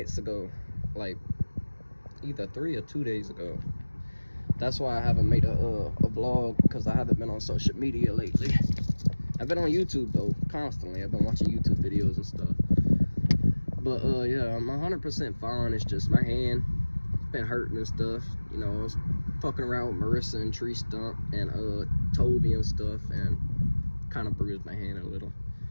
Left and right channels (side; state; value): both; inverted; correlation -1.00